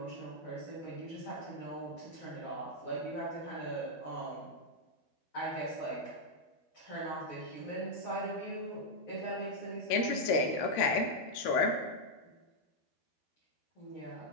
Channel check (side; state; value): right; late; 13 ms